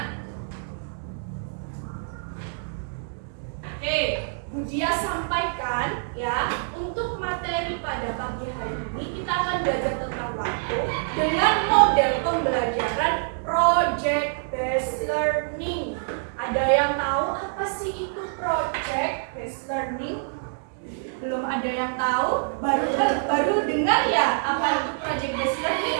oke, Bu Dia sampaikan ya, untuk materi pada pagi hari ini kita akan belajar tentang waktu dengan model pembelajaran project based learning. Ada yang tahu apa sih itu project based learning? Belum ada yang tahu? Baru dengar ya apa itu project based learning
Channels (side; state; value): left; silent; digital silence